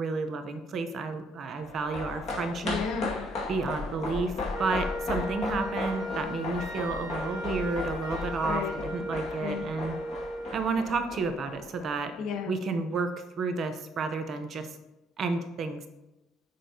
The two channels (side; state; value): both; normal; correlation 0.68